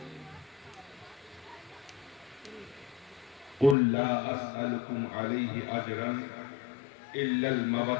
قل لا أسألكم عليه أجرا إلا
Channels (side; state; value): right; drops out; at 3.8 s